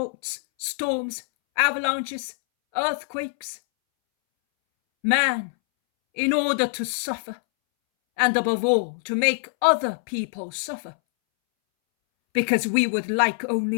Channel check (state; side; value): silent; right; 62 dB below the other